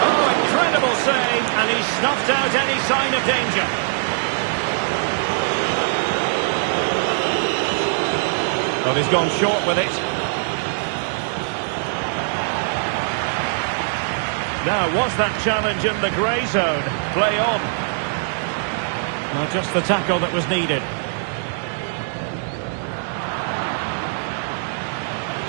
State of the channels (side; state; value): left; silent; digital silence